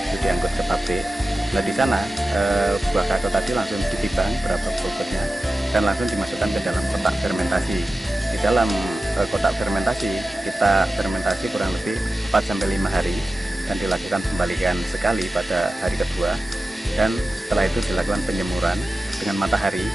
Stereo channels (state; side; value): normal; both; correlation 0.94